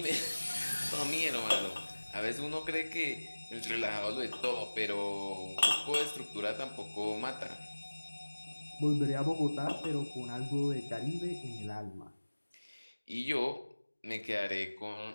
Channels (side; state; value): both; inverted; correlation -1.00